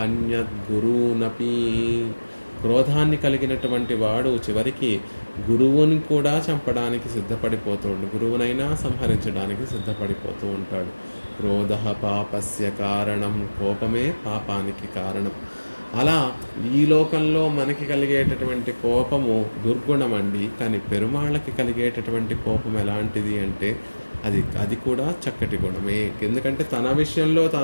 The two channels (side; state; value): both; inverted; correlation -1.00